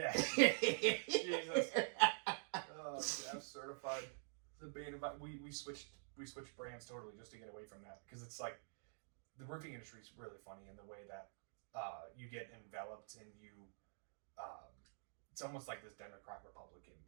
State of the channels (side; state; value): left; silent; digital silence